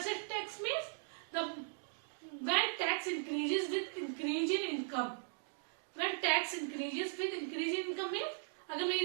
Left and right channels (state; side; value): silent; left; digital silence